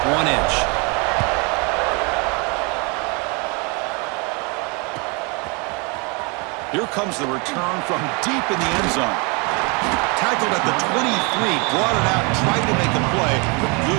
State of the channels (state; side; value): quieter; left; 31.1 dB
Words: 1 inch. Here comes the return from deep in the end zone. Tackled at the 23, brought it out, tried to make a play, but